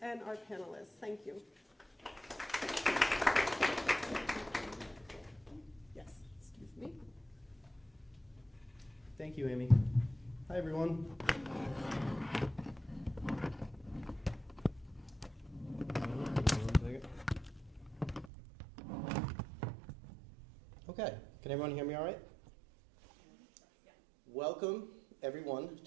and our panelists. Thank you. Yes, excuse me. Thank you, Amy. Hi, everyone. Okay, can everyone hear me all right? Yeah. Welcome, everyone,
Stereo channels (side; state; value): left; drops out; at 18.3 s